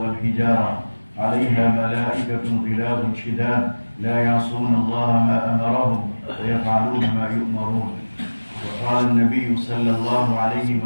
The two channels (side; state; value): both; inverted; correlation -1.00